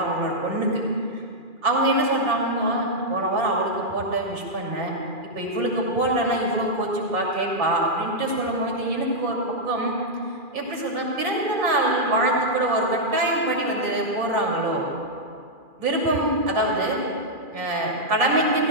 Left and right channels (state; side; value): late; left; 2.4 ms